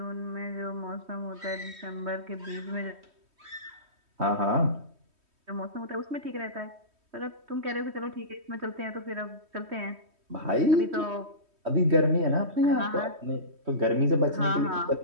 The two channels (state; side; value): late; left; 3.2 ms